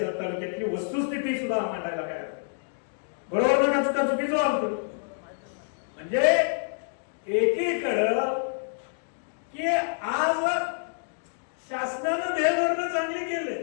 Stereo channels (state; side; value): silent; right; digital silence